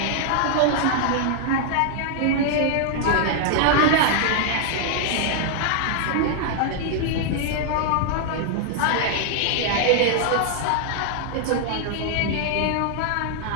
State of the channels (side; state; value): both; different; correlation 0.00